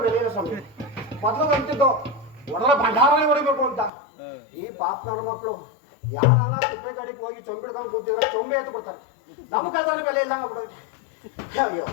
ಬೆಲೆ ಇಲ್ಲ ಸ್ವಾಮಿ. ಮೊದಲು ಅಂತಿದ್ದು ಒಡಲ ಭಂಡಾರನೇ ಹೊಡಿಬೇಕು ಅಂತ. ಈ ಪಾಪನವ್ರ ಮಕ್ಕಳು ಯಾರಾನ ತಿಪ್ಪೆ ಗಾಡಿಗೆ ಹೋಗಿ ಚೊಂಬಿಡ್ಕೊಂಡು ಕೂತಿದ್ರೆ ಚೊಂಬೆ ಎತ್ತು ಬಿಡ್ತಾರೆ. ನಮ್ಮ ಕಳ್ತನ ಬೆಲೆ ಇಲ್ಲ ಬಿಡ್ರಿ. ಅಯ್ಯೋ,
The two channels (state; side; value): drops out; right; at 3.9 s